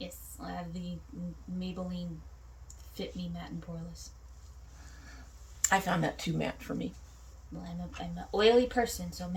I have the Maybelline Fit Me Matte and Poreless. I found that too matte for me. Well, I'm an oily person, so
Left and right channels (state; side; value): identical; both; correlation 1.00